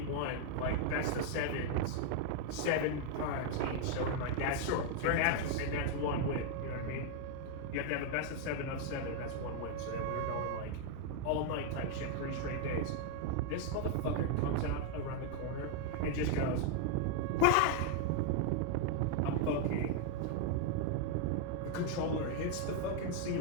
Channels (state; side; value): different; both; correlation 0.00